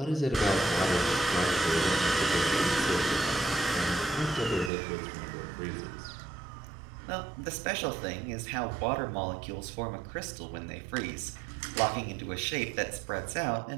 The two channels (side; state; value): left; drops out; at 4.7 s